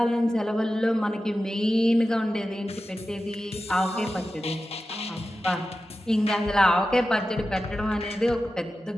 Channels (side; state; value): both; normal; correlation 0.93